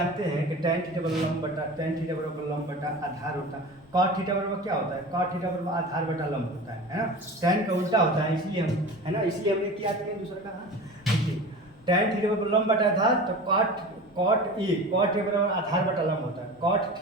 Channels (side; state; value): both; normal; correlation 0.34